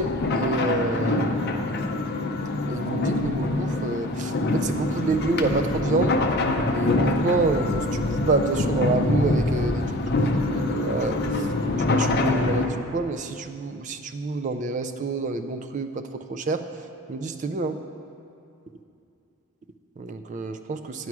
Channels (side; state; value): both; normal; correlation 0.42